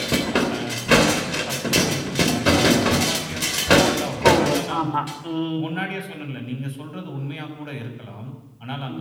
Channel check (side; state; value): both; identical; correlation 1.00